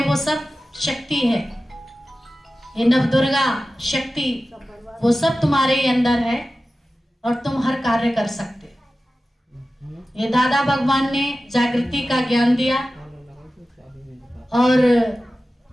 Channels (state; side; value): normal; both; correlation 0.95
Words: वो सब शक्ति है। ये नवदुर्गा शक्ति वो सब तुम्हारे ही अंदर है और तुम हर कार्य कर सकते हो। ये दादा भगवान ने जागृति का ज्ञान दिया और